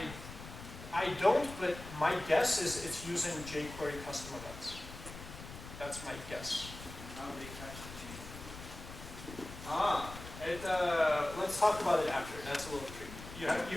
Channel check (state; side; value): noise; left; rumble, 13 dB below the sound